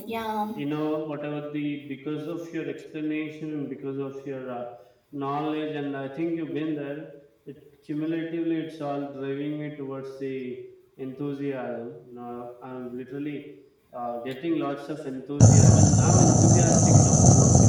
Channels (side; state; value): both; identical; correlation 1.00